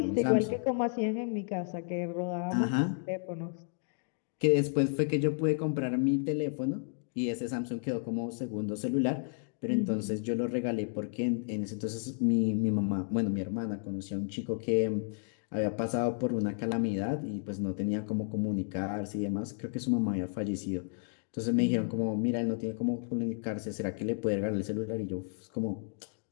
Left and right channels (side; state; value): right; silent; 56 dB below the other